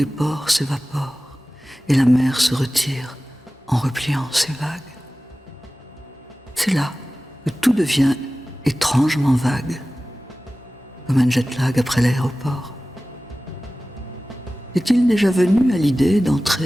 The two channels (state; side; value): normal; both; correlation 0.96